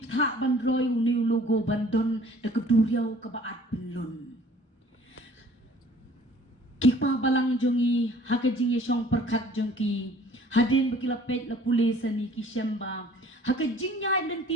bandroy uni logo bandon da keduriau ke baat pelun kikpa balang jongi hakajing yesong perkat jongki hadin bakila pet la pulis ani ki shemba hakajing nya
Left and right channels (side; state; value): both; normal; correlation 0.53